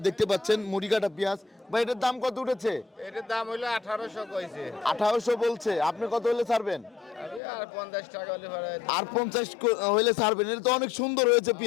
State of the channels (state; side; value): drops out; right; at 7.4 s